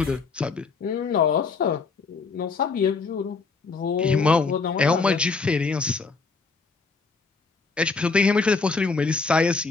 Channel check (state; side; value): quieter; right; 4.5 dB